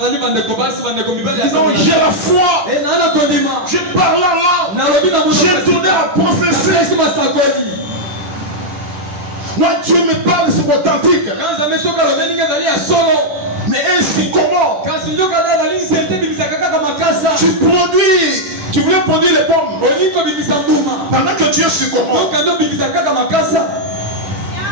Ils ont j'ai la foi. Je parle en langue. J'ai tourné à prophétie. Moi, Dieu me parle, c'est authentique. Mais ainsi comment? Tu voulais produire les pommes. Pendant que Dieu se comment? Ça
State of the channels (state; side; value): late; left; 10 ms